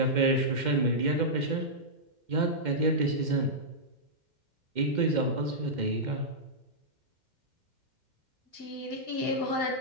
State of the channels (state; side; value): late; left; 2.1 ms